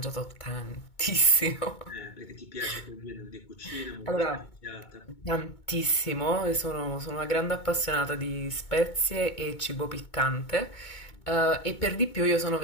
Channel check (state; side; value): late; right; 2.2 ms